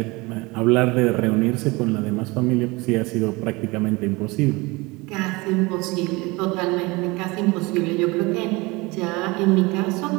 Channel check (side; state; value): left; quieter; 24.2 dB